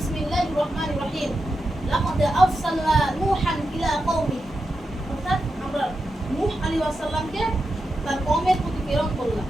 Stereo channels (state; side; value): normal; both; correlation 0.88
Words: রহমানির রহিম, লাকাদ আরসালনা নূহান ইলা কওমি, অর্থাৎ আমরা নূহ আলাইহিস সালামকে তার কওমের প্রতি প্রেরণ করলাম।